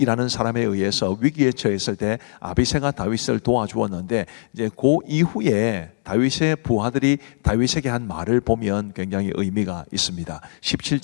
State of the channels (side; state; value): right; silent; digital silence